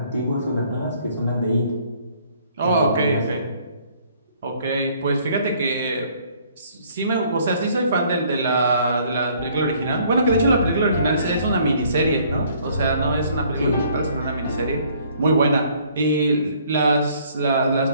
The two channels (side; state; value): both; inverted; correlation -0.61